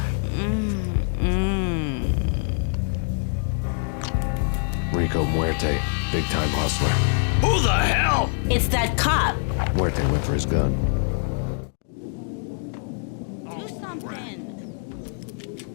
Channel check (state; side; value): silent; right; 60 dB below the other